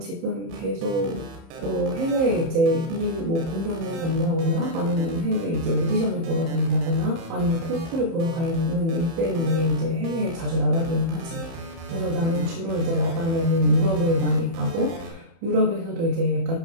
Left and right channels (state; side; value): late; left; 31 ms